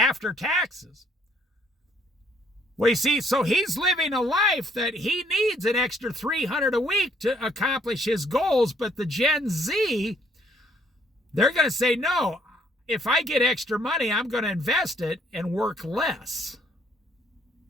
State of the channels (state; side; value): normal; both; correlation 0.65